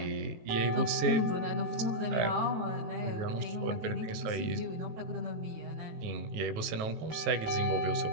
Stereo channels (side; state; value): left; late; 19 ms